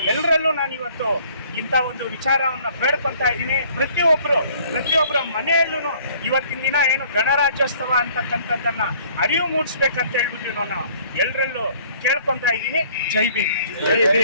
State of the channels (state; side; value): inverted; both; correlation -0.57